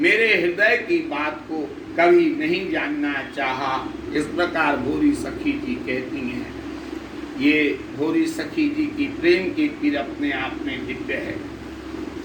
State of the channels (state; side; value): identical; both; correlation 1.00